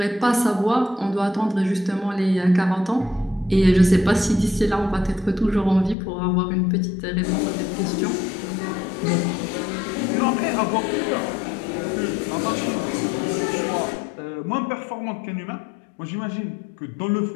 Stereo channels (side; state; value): right; drops out; at 6.0 s